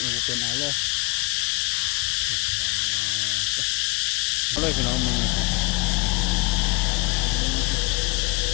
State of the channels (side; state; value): right; quieter; 25.5 dB